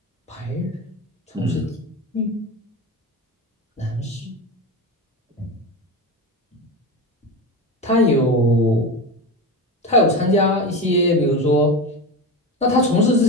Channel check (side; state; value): both; normal; correlation 0.23